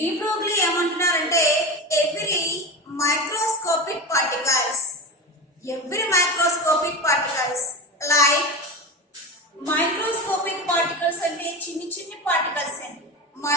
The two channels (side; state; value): both; normal; correlation 0.25